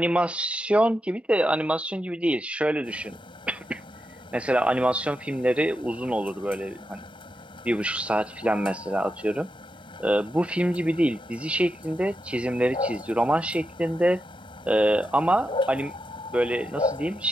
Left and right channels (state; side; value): normal; both; correlation 0.87